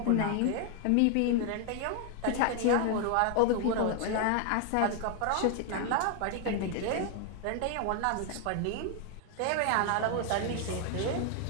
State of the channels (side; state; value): both; different; correlation 0.00